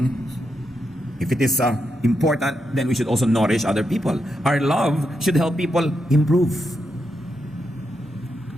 if it is important, then we should also nourish other people. Our love should help people improve.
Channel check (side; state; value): both; normal; correlation 0.84